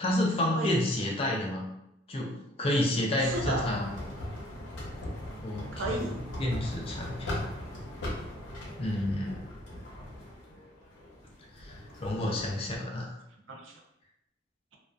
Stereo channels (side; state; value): both; normal; correlation 0.58